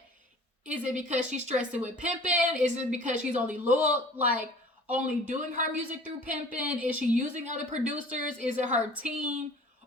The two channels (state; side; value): normal; both; correlation 0.47